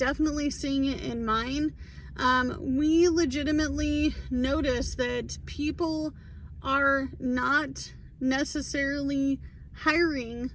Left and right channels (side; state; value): both; identical; correlation 1.00